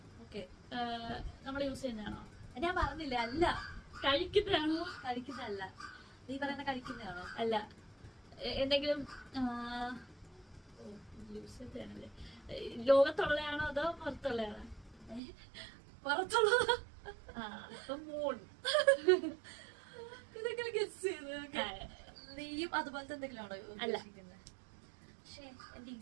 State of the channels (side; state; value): left; drops out; at 15.2 s